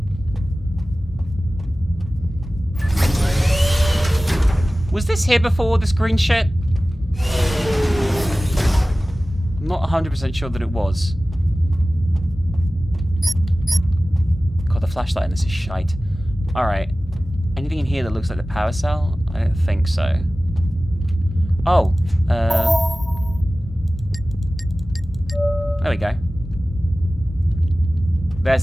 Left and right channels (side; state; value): both; normal; correlation 0.97